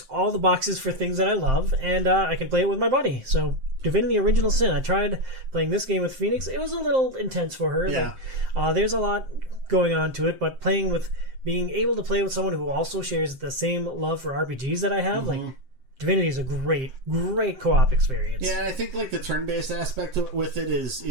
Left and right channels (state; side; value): late; left; 7.6 ms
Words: all the boxes for things that I love, and I can play it with my buddy. So Divinity Original Sin. I tried playing this game with Phoenix. It was a little intense for her. Yeah. Like, there's a lot going on to it, but being able to play with someone who also shares the same love for RPGs that I have, like Divinity is a great co-op experience. Yeah, and I think like the turn-based aspect with it